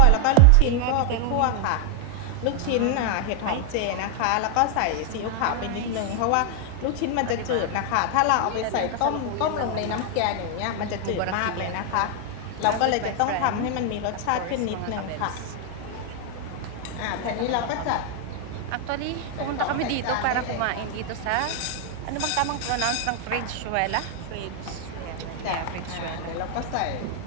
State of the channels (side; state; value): both; different; correlation 0.00